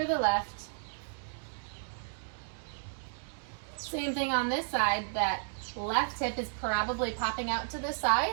the left. Same thing on this side, that left hip is probably popping out to the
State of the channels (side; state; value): left; silent; digital silence